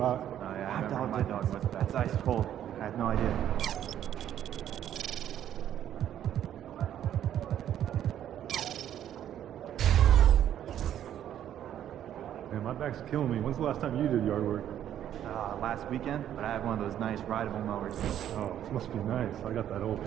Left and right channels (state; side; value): quieter; left; 10.7 dB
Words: Oh, yeah, I remember my dog was. That's ice cold. I had no idea. Man, my back's killing me. When's the last time you did yard work? Last weekend, but I have one of those nice rideable mowers. Oh, this must be nice. I got that old